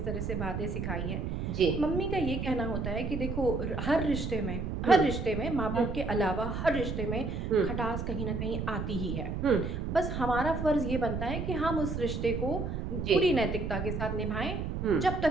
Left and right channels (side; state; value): right; noise; rumble, 3 dB below the sound